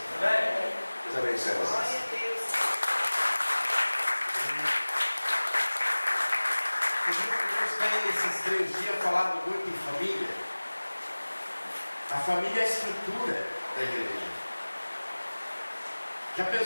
Deus abençoe vocês. Deus tem esses 3 dias falado muito em família. A família é a estrutura da igreja. Já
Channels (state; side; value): inverted; both; correlation -1.00